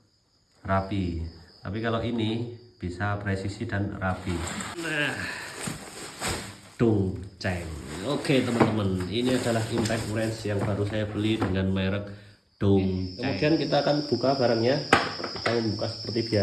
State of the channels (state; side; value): identical; both; correlation 1.00